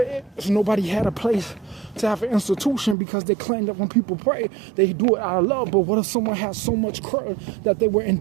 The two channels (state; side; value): drops out; left; at 3.0 s